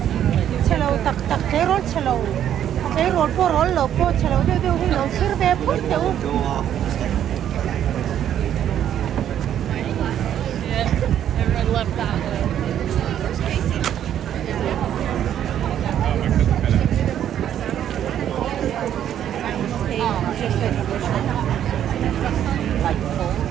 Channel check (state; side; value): quieter; left; 10.4 dB